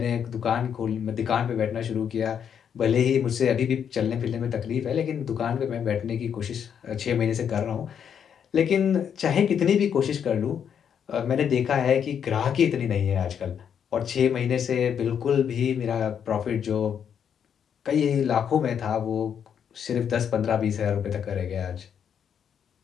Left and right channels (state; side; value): quieter; right; 8.1 dB